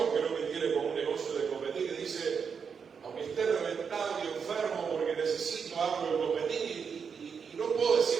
que no me tiene como un negocio de competir, y dice, aunque esté reventado y enfermo porque necesito algo de competir y no puedo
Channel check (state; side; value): quieter; left; 6.3 dB